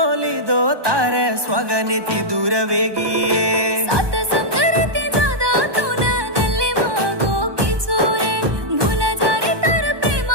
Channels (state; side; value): late; left; 1.2 ms